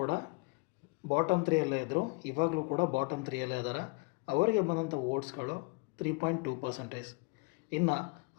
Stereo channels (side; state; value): right; quieter; 29.7 dB